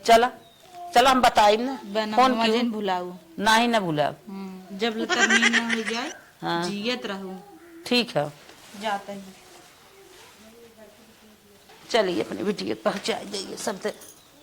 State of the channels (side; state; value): both; identical; correlation 1.00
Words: चला चला हम बताई ना फोन बैनामा क्यों जिन भुलाऊ ना ही ना भूला जब तरमीन न हो जाए हाँ। जियत रहूं ठीक है जाते हैं चलिए अपनी बिटिया पहुंचा जाइए सब